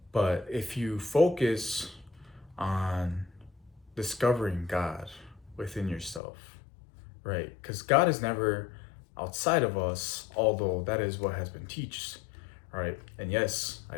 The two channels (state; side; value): drops out; right; at 6.2 s